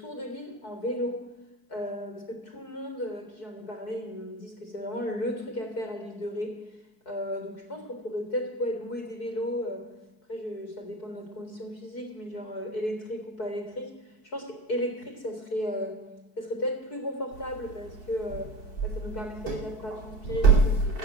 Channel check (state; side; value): late; right; 4.6 ms